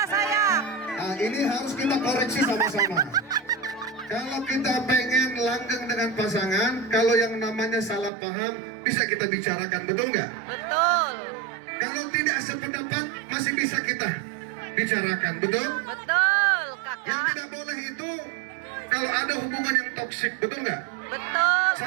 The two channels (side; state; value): left; drops out; at 8.1 s